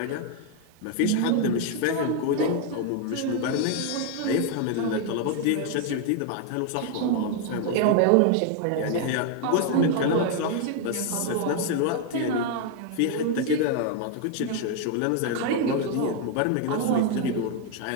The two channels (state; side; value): different; both; correlation 0.01